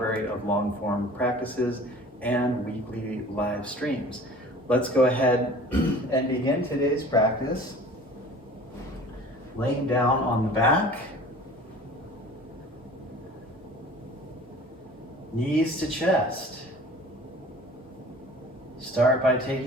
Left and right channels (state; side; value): normal; both; correlation 0.44